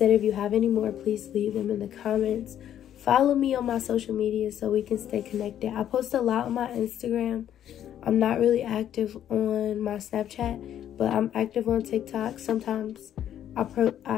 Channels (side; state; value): right; quieter; 10.7 dB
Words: if you have any more, please leave them in the comments. Follow me on my social media so we can stay connected. I post a lot on my Instagram. I'm not really active on my Snapchat, but I'm active on TikTok. Sometimes